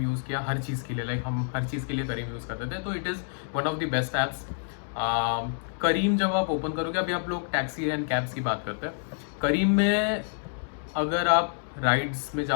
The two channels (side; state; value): right; silent; digital silence